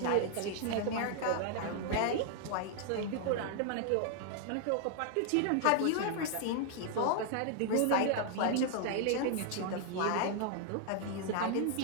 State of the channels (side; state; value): both; different; correlation 0.00